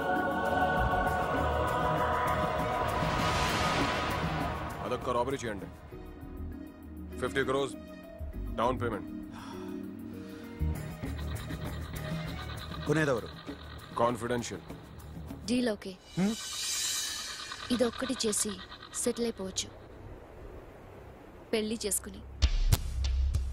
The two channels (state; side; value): identical; both; correlation 1.00